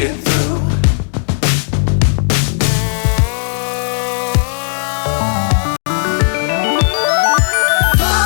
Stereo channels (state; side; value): silent; right; digital silence